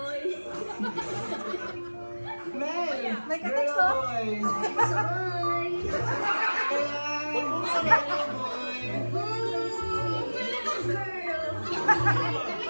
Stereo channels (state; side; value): inverted; both; correlation -1.00